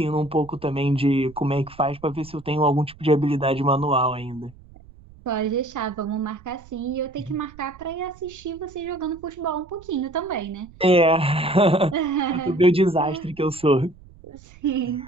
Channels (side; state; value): right; noise; rumble, 23 dB below the sound